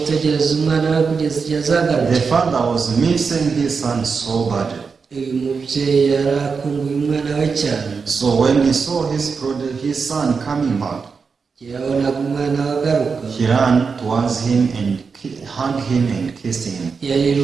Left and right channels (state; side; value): quieter; left; 5.3 dB